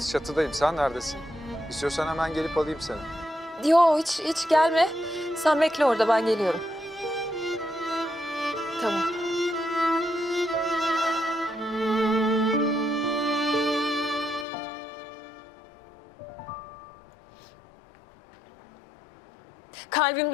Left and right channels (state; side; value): drops out; right; at 14.5 s